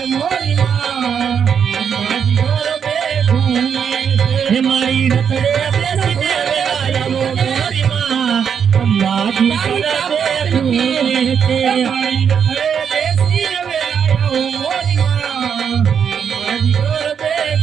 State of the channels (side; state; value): left; quieter; 7.4 dB